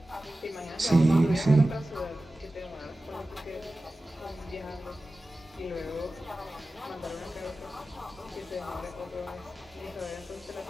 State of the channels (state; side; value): normal; both; correlation 0.95